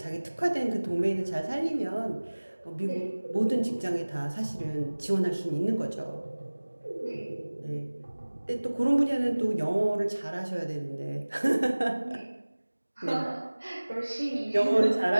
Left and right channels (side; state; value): both; inverted; correlation -1.00